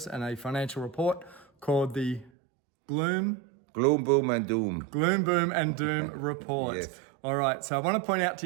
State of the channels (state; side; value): drops out; left; at 2.3 s